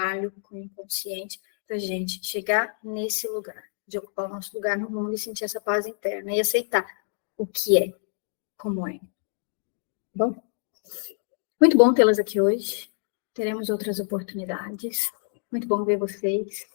com o inconsciente para a gente chegar nesse lugar, de ocupar o nosso lugar no mundo e sentir essa paz interna e aceitar o que é, como é. Bom, muito bom tê-las aqui hoje. Teremos outras oportunidades. Muito bom ver vocês.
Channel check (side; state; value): right; silent; digital silence